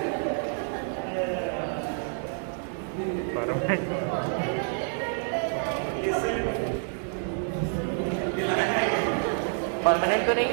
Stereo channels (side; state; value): left; silent; 55 dB below the other